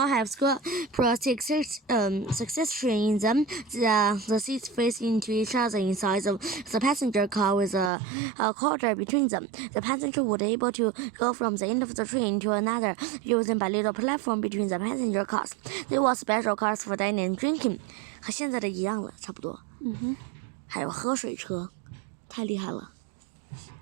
succession in them. The seats faced into each other inside the passenger car with a corridor between them. The passenger would be able to go from the end of the train to another using a little platform between the passenger cars. There were special cars for dining and drinking. 和现在的一样了，差不多。还有喝水车，太厉害了。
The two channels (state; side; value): drops out; left; at 7.9 s